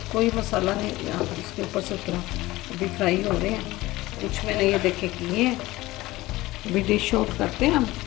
कोई मसाला नहीं यहाँ पर इसके ऊपर से उतरा। अभी फ्राई हो रहे हैं। कुछ मैंने ये देखे किए हैं। अभी डिश आउट करते हैं हम।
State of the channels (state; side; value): quieter; right; 18.7 dB